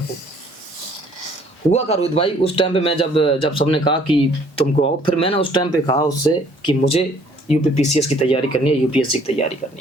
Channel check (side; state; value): both; normal; correlation 0.59